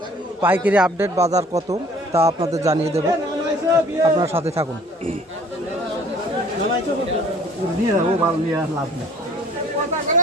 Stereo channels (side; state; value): both; normal; correlation 0.53